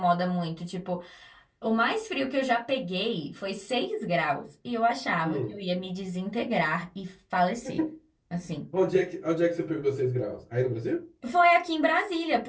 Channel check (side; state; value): both; identical; correlation 1.00